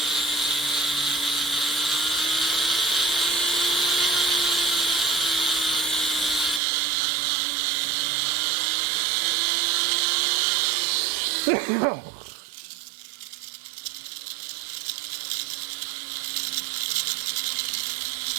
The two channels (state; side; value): drops out; left; at 6.6 s